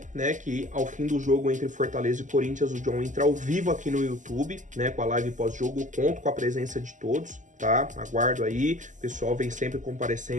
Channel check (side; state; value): left; late; 0.37 ms